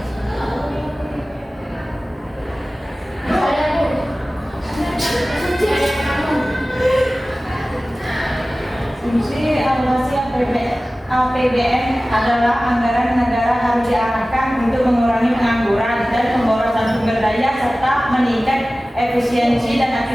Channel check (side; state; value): both; normal; correlation 0.97